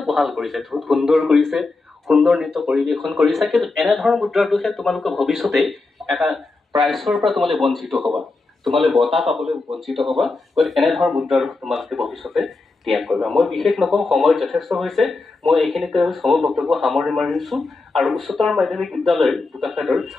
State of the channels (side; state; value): right; quieter; 3.6 dB